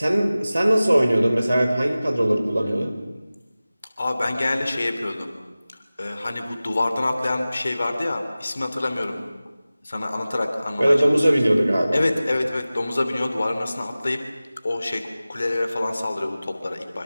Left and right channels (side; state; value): both; inverted; correlation -0.97